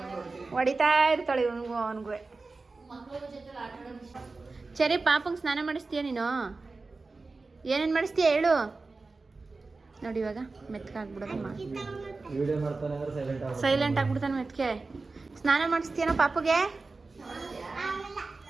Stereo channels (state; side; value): quieter; left; 3.7 dB